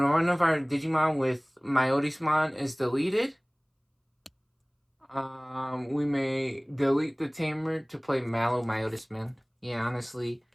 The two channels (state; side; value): identical; both; correlation 1.00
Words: of our Digimon with myotisman is deleted, we may delete the tamer to play myotisman. Yeah, honestly,